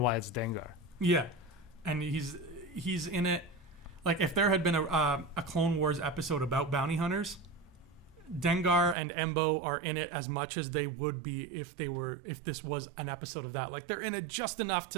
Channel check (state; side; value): drops out; left; at 9.0 s